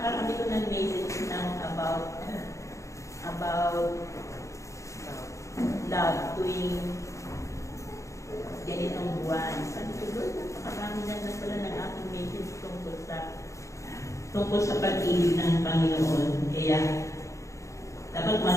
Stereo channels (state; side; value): late; right; 0.15 ms